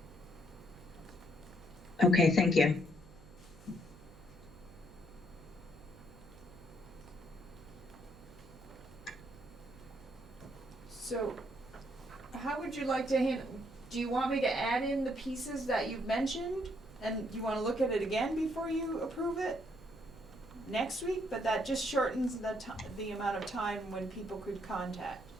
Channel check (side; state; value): right; noise; hum, 21 dB below the sound